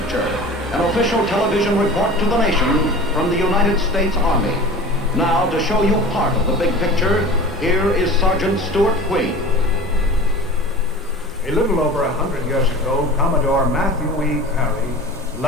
an official television report to the nation from the United States Army. Now, to show you part of the big picture, here is Sergeant Stuart Queen. A little over 100 years ago, Commodore Matthew E. Perry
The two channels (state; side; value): normal; both; correlation 0.37